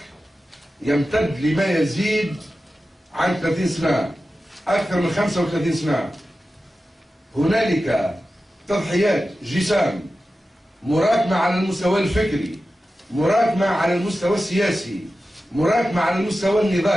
يمتد لما يزيد عن 30 سنة، أكثر من 35 سنة. هنالك تضحيات جسام مراكمة على المستوى الفكري، مراكمة على المستوى السياسي، مراكمة على المستوى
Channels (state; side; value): normal; both; correlation 0.93